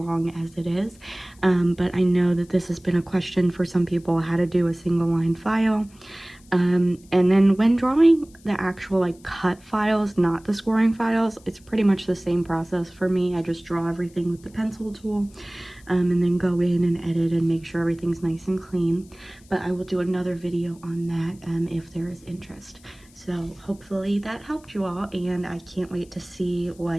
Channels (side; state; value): left; noise; hiss, 28 dB below the sound